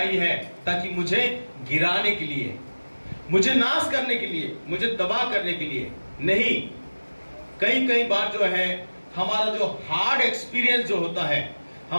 है ताकि मुझे गिराने के लिए, मुझे नाश करने के लिए, मुझे तबाह करने के लिए नहीं। कई बार जो है हमारा जो हार्ड एक्सपीरियंस जो होता है,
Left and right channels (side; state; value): both; inverted; correlation -1.00